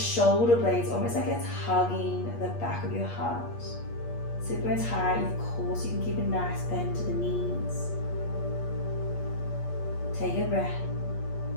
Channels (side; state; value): right; late; 8.4 ms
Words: blades almost like it's hugging the back of your heart. Sit bones high, of course you can keep a nice bend to the knees. Take a breath.